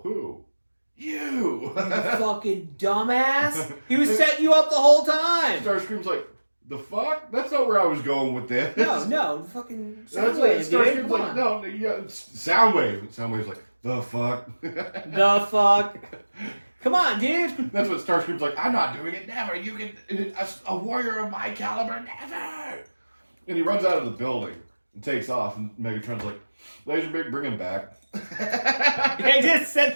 who? You! Fucking dumbass! He was setting you up the whole time! Starscream's like, the fuck? That's not where I was going with this. No, fucking Soundwave, Starscream's like, no, yeah, Soundwave. Soundwave's like, the fuck? The fuck? Come on, dude! That's what Starscream's like, I'm not doing it, never. You can, a warrior of my caliber, never! And he runs out of the building and takes off, and Megatron's like, Laserbeak, bring him back. They just sent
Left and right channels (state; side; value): inverted; both; correlation -1.00